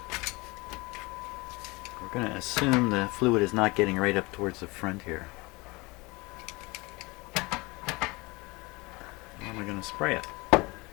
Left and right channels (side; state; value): right; quieter; 24.6 dB